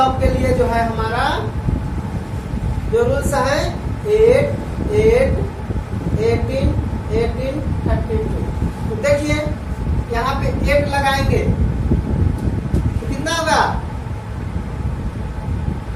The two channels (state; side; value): identical; both; correlation 1.00